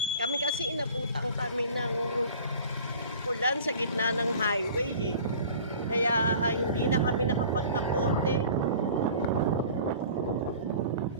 Kami kasi inabutan kami ng ulan sa gitna ng highway eh. Kaya hindi na kami nakapagkapote.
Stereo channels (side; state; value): both; inverted; correlation -0.44